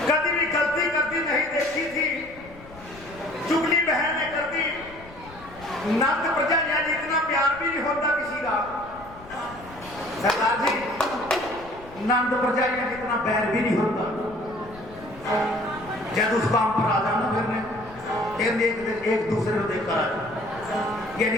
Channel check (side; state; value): left; noise; rumble, 20 dB below the sound